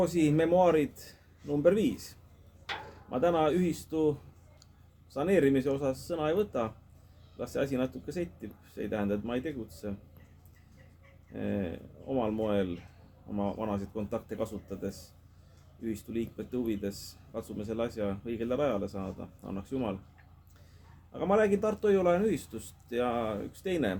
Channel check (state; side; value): identical; both; correlation 1.00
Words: memuaarid number 5. Ma täna ühistu saneerimise osas sõna ei võta. Las see asi natuke settib. See ei tähenda, et ma ei tegutse. Omal moel, oma vanasid kontakte kasutades, ühistu liikmete huvides katsume selle asja õigele rajale saada. Annaks Jumal. Aga ma räägin Tartu Hoiu-laenu ühistust ja üks teine